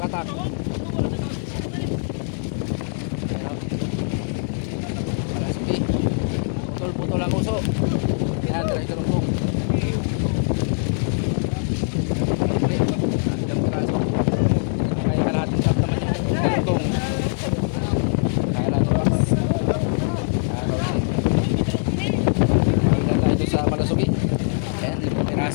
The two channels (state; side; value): silent; right; 62 dB below the other